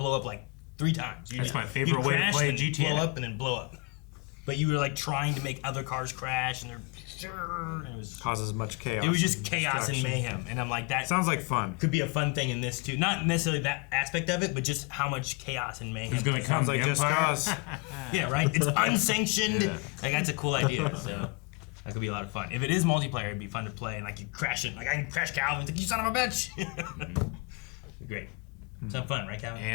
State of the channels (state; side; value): quieter; right; 29.7 dB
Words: up like 3 times. That's my favorite way to crash play and GTA. Blow up and then blow up. But you were like trying to make other cars crash, and and it was causes much chaos. it was just and chaos and destruction. mayhem, and I'm like, that Sounds like fun. could be a fun thing in this too. Not necessarily that aspect of it, but just how much chaos and mayhem. Who's going to come? Sounds like the Just Empire? Cause. Yeah, right. It's unsanctioned. Like, that's a cool idea. So that could be a lot of fun. If it is multiplayer, it'd be fun to play. And like you crash it, like I can crash Calvin. It's like, you son of a bitch. Great. Some fun, right, Calvin?